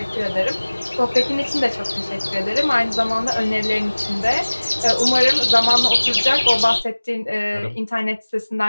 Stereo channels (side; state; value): both; inverted; correlation -1.00